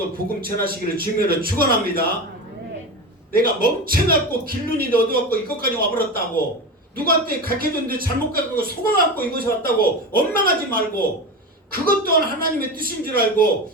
복음 전하시기를 주님으로 축원합니다. 내가 멍청갖고 길눈이 어두웠고 이것까지 와버렸다고, 누구한테 가르쳐줬는데 잘못 가르치고 속아갖고 이곳에 왔다고 원망하지 말고, 그것 또한 하나님의 뜻인 줄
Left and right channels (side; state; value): both; normal; correlation 0.24